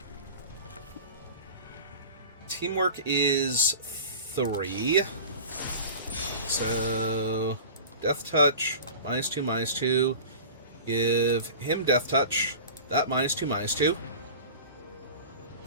teamwork is 3. So... Death Touch, -2, -2. Give him Death Touch. That -2, -2.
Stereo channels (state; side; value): inverted; both; correlation -0.37